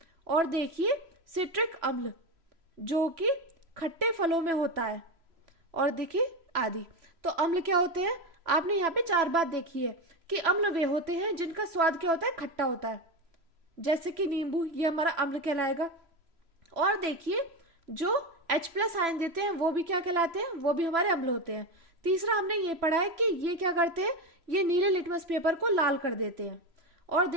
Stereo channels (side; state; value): left; late; 3.0 ms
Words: और देखिए सिट्रिक अम्ल जो कि खट्टे फलों में होता है, और देखिए आदि। तो अम्ल क्या होते हैं? आपने यहाँ पे 4 बात देखी है कि अम्ल वे होते हैं जिनका स्वाद क्या होता है? खट्टा होता है, जैसे कि नींबू, ये हमारा अम्ल कहलाएगा। और देखिए, जो H+ आयन देते हैं वो भी क्या कहलाते हैं? वो भी हमारे अम्ल होते हैं। तीसरा हमने ये पढ़ा है कि ये क्या करते हैं? ये नीले लिटमस पेपर को लाल कर देते हैं। और